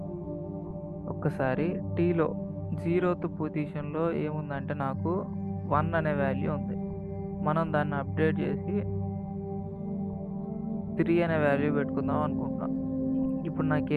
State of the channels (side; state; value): both; identical; correlation 1.00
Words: ఒక్కసారి టీలో 0th పొజిషన్లో ఏముందంటే నాకు 1 అనే వాల్యూ ఉంది. మనం దాన్ని అప్డేట్ చేసి 3 అనే వాల్యూ పెట్టుకుందాం అనుకుంటున్నాం. ఇప్పుడు